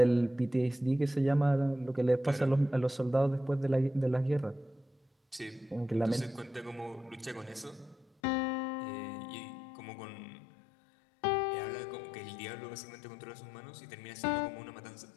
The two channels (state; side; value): drops out; right; at 8.1 s